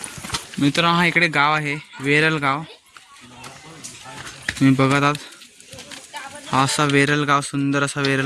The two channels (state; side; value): identical; both; correlation 1.00